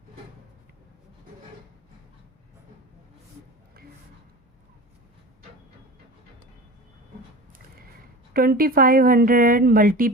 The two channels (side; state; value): both; normal; correlation 0.34